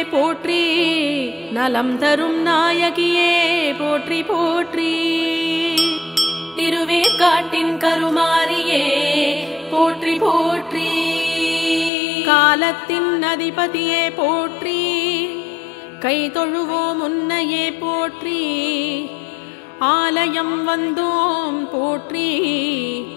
போற்றி. நலம் தரும் நாயகியே போற்றி போற்றி. திருவேற்காட்டின் கருமாரியே போற்றி போற்றி. காலத்தின் அதிபதியே போற்றி. கை தொழுவோம் உன்னையே போற்றி. ஆலயம் வந்தோம் போற்றி.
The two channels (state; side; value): drops out; right; at 11.9 s